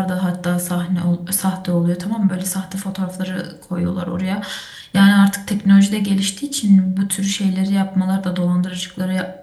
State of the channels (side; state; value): both; identical; correlation 1.00